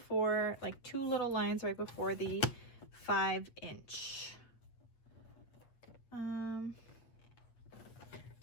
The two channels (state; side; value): late; right; 8.7 ms